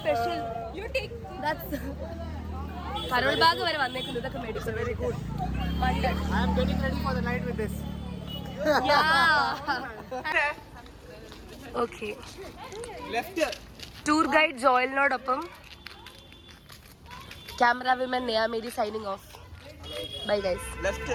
You take. That's Karol Bagh വരെ വന്നേക്കുന്നു, ഇതൊക്കെ മേടിച്ചു. Very good. Wondered. I am getting ready for the night with this. Yeah. Okay. Left. Tour guide ജോയലിനോടൊപ്പം camera women Neya Mary signing off. Bye guys. Left.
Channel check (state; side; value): identical; both; correlation 1.00